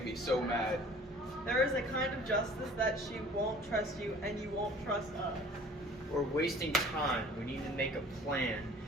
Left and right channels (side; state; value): both; normal; correlation 0.49